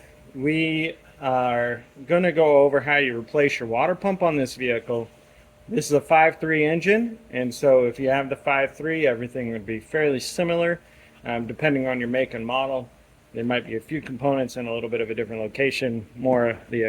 we are going to go over how you replace your water pump on this vehicle. This is a 5.3 engine, and so if you have the 5.3, everything would be fairly similar. Depending on your make and model, there might be a few components in a little bit of a different location, more of the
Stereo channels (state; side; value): identical; both; correlation 1.00